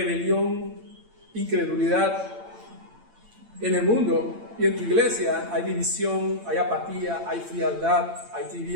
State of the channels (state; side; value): late; left; 8.8 ms